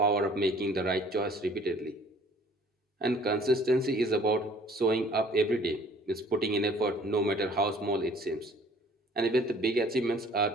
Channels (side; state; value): both; normal; correlation 0.54